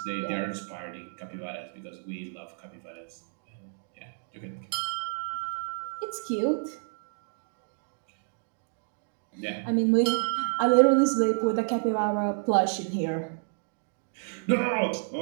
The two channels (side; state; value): left; silent; digital silence